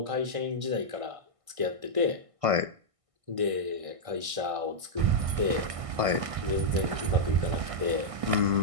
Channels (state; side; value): late; left; 1.6 ms